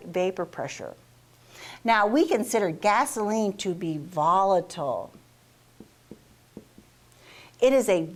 vapor pressure. Now, we consider gasoline to be volatile. It is a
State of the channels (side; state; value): both; identical; correlation 1.00